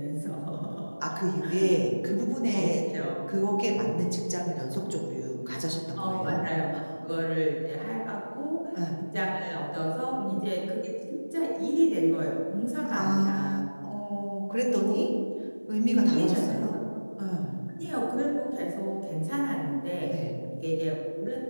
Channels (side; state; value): both; inverted; correlation -1.00